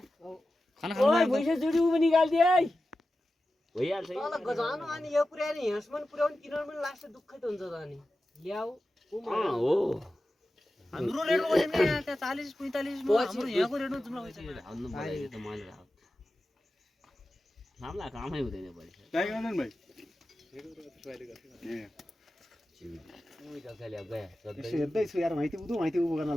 खाना खानु ओइ भइसक्यो जुडी उ पनि निकाल्दिए है भइहाल्छ तल गजानो अनि यो पुर्याएर हिँड्सम्म पुर्याउनु किनर पनि लास्ट दुःखै त हुन्छ त अनि ल्याऊ हो हाम्रो रेट हो नि त्यहाँ 40 45 मा हाम्रो यहाँको रेट जुम्ला भइसक्यो हाल्नु पर्यो त मैले नामला कामै हुँदैन बढी ट्राई गर्नु भाइ हेर्दैछु यार माइती उदो गर्न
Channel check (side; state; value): both; normal; correlation 0.93